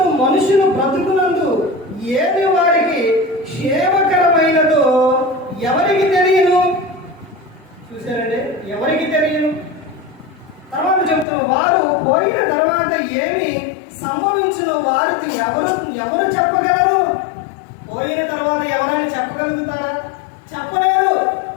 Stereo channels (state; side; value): drops out; right; at 11.2 s